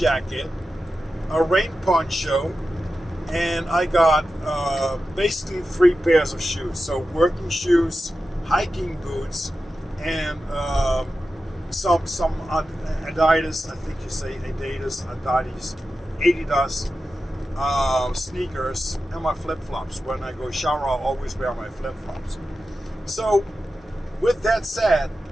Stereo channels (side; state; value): both; normal; correlation 0.92